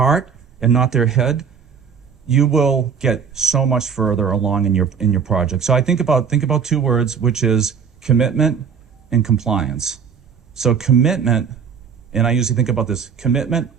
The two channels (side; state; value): left; quieter; 6.8 dB